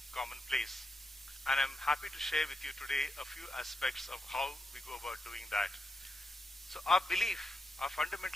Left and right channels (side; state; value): both; normal; correlation 0.85